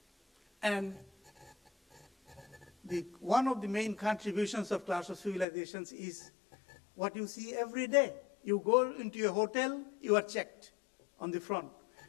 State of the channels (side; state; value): right; drops out; at 5.5 s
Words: And one of the main contributions of Clash of Civilizations is what you see every day. You go into a hotel, you are checked on the front.